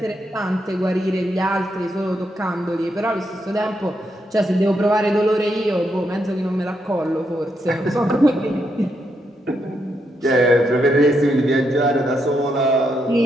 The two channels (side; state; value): both; normal; correlation 0.80